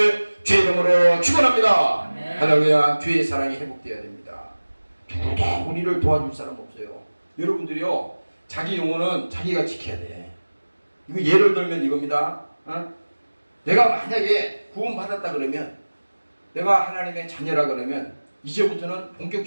주의 이름으로 축원합니다. 할렐루야. 주의 사랑이 회복되어야 됩니다. 누구도 우리를 도와줄 사람 없어요. 여러분들이요, 자기 영혼은 자기가 지켜야 돼. 이거 예를 들면 이겁니다. 내가 만약에 구원받았다 그러면, 내가 하나님의 자녀라 그러면 이제부터는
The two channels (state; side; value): inverted; both; correlation -1.00